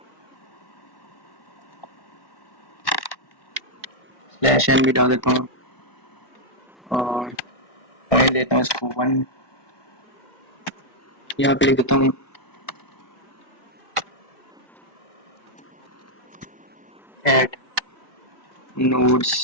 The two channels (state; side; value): late; right; 1.6 ms